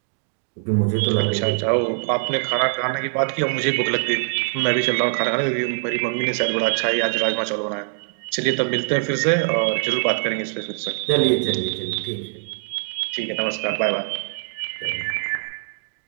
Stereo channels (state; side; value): silent; left; digital silence